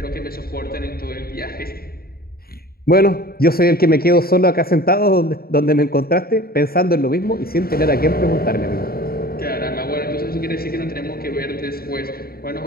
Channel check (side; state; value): right; late; 0.44 ms